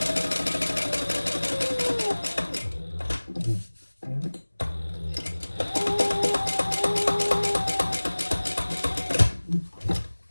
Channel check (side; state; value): both; inverted; correlation -1.00